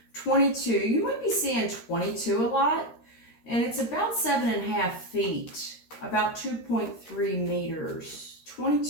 22, you might be seeing 22 a lot, and it's about 7.5 feet, about 2.3 meters.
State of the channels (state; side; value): late; right; 13 ms